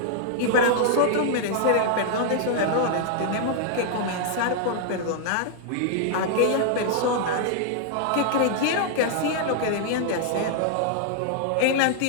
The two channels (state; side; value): different; both; correlation -0.01